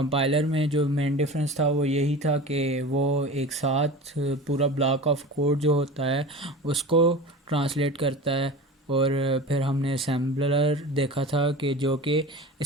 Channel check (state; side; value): normal; both; correlation 0.34